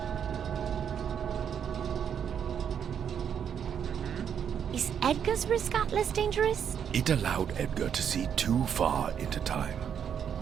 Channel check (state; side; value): quieter; left; 8.1 dB